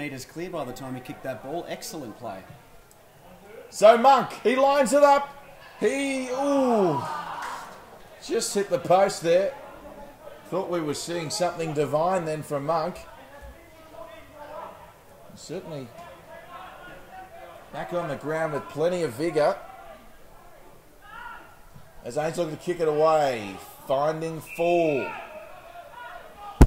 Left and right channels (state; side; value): identical; both; correlation 1.00